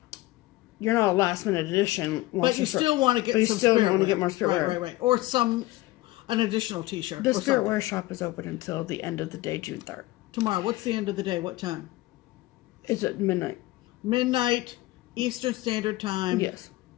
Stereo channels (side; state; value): right; quieter; 18.6 dB